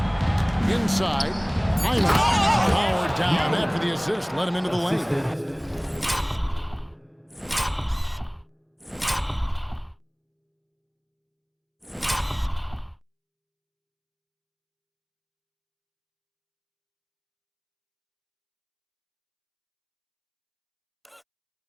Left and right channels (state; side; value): identical; both; correlation 1.00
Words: Inside. Powered down after the assist. Let him into the lane.